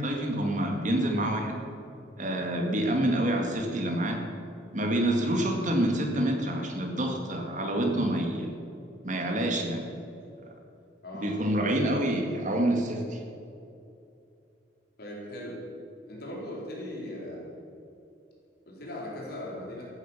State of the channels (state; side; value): normal; both; correlation 0.60